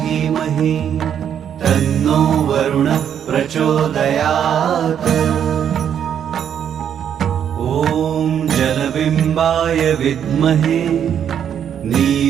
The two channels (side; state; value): left; quieter; 8.9 dB